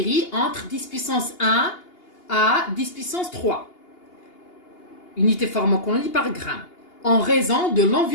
entre 10 puissance 1 à 10 puissance 3 unités pharmacologiques par gramme, en raison de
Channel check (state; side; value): late; right; 2.8 ms